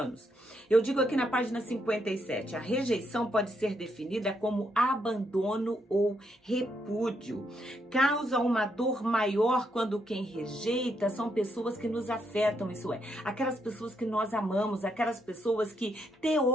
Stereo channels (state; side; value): normal; both; correlation 0.77